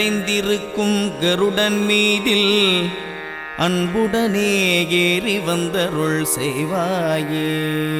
கருடன் மீதில் அன்புடனே ஏறி வந்தருள் செய்வாயே.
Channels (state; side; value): identical; both; correlation 1.00